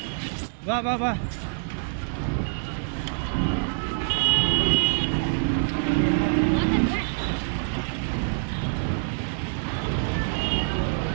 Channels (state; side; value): silent; left; 57 dB below the other